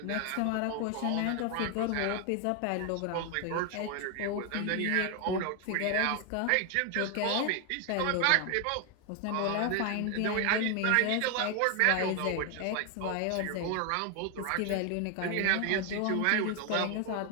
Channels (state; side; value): different; both; correlation 0.01